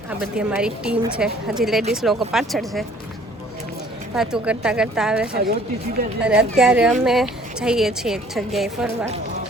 આ બધી અમારી ટીમ છે. હજી લેડીઝ લોકો પાછળ છે, વાતો કરતા કરતા આવે છે. અને અત્યારે અમે જઈએ છીએ એક જગ્યાએ ફરવા.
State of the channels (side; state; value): both; normal; correlation 0.55